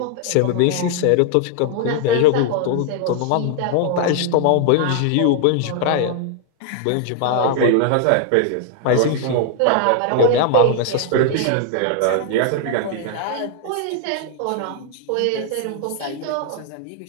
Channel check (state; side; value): different; both; correlation 0.00